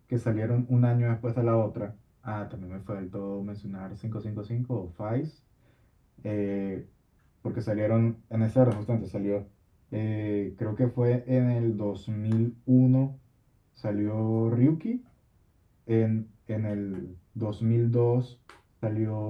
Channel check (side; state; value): both; identical; correlation 1.00